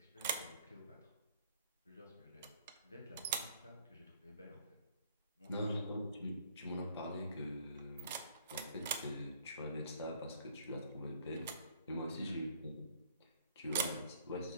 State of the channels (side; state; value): both; inverted; correlation -0.58